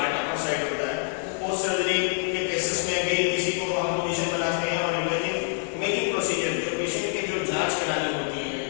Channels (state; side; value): silent; right; 60 dB below the other